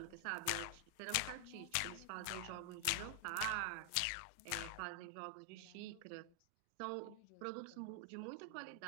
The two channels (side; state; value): both; different; correlation 0.00